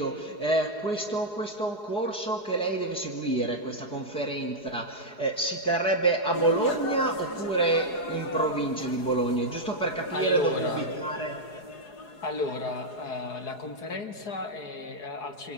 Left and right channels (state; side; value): late; right; 4.8 ms